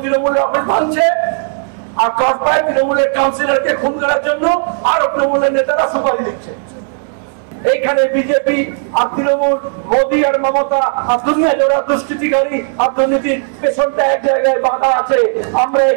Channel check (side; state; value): left; silent; digital silence